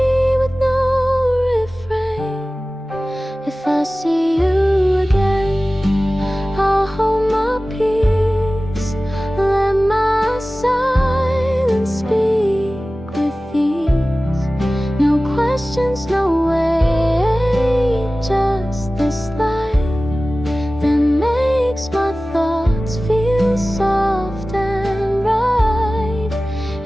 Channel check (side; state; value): both; normal; correlation 0.97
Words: with no refrain. If I see you again, I'll hold my peace, let my silence speak with ease. No questions, no way, just this light that makes my thoughts feel soft and right.